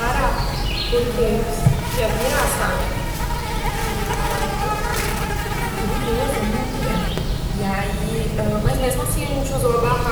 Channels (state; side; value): identical; both; correlation 1.00